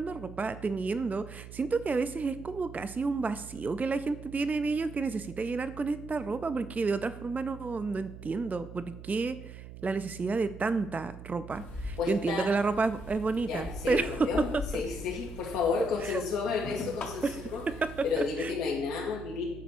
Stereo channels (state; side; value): noise; right; hum, 14 dB below the sound